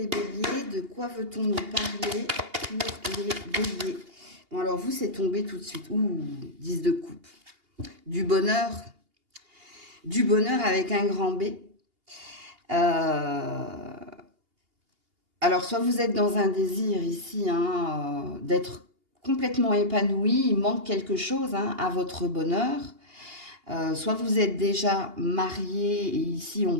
béliers, de quoi veut-on nous parler pour les béliers? Bon, alors vous, c'est tombé tout de suite. Ouh, 10 de coupe. Du bonheur avec un grand B. Alors, soit vous êtes dans un désir ici hein, d'être complètement épanoui, il manque quelque chose hein, à votre bonheur. Soit vous êtes déjà marié, et ici on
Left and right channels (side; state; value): left; late; 2.8 ms